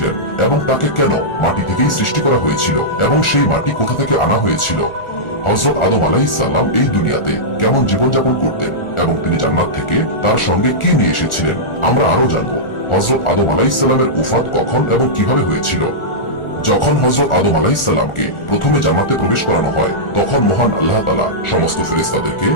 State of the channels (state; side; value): late; right; 1.4 ms